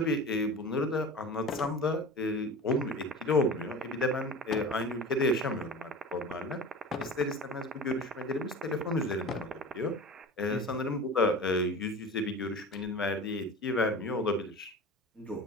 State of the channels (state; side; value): normal; both; correlation 0.34